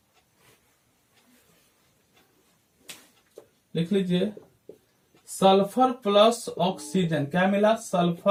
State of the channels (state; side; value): identical; both; correlation 1.00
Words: लिख लीजिए सल्फर प्लस ऑक्सीजन। क्या मिला?